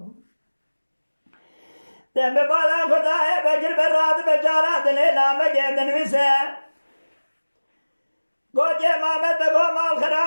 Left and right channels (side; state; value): both; inverted; correlation -1.00